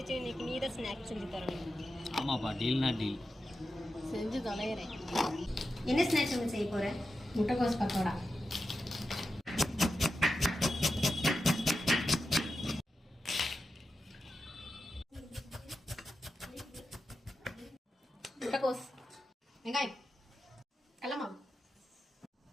இன்னைக்கு. நீ தான் ஸ்நாக்ஸ் செஞ்சு தரணும். ஆமாப்பா, டீல்னா டீல். செஞ்சு தொலைகிறேன். என்ன ஸ்நாக்ஸ் ஒன்று செய்ய போகிறேன்? முட்டைக்கோஸ் பக்கோடா. முட்டைக்கோஸ், வெங்காயம், கடலை மாவு,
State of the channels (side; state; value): both; normal; correlation 0.90